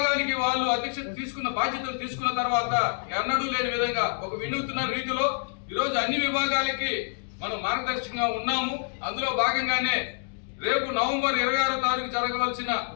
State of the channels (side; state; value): right; silent; 60 dB below the other